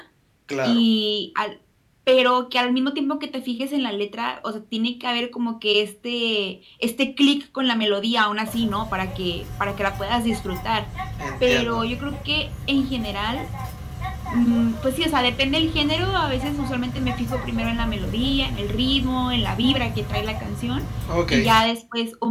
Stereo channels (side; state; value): both; identical; correlation 1.00